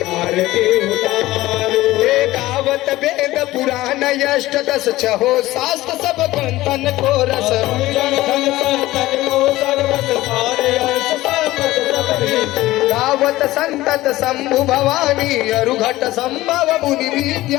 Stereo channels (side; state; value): right; quieter; 17.2 dB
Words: आरती उतारो हे गावत वेद पुराण यष्ट दस छहो शास्त्र सब ग्रंथन को रस गावत संतत शंभु भवानी अरुघट संभव मुनि